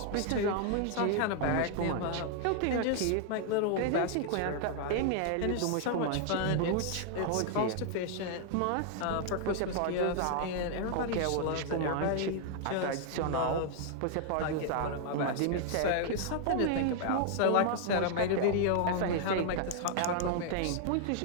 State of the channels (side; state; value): both; different; correlation 0.00